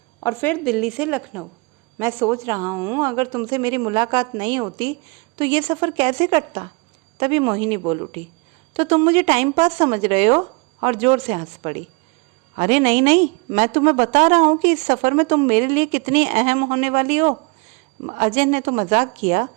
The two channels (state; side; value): quieter; left; 29.0 dB